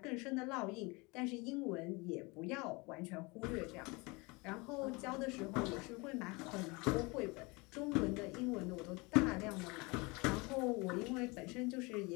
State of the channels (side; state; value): right; quieter; 26.5 dB